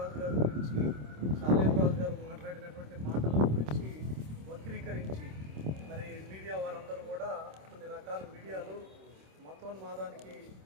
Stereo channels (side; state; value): left; late; 26 ms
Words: గారి గురించి, శాలేంరాజు గారు మాట్లాడినటువంటి మాటల గురించి వక్రీకరించి మరి మీడియా వారందరూ కూడా కొన్ని రకాల మీడియాలు మతోన్మాదానికి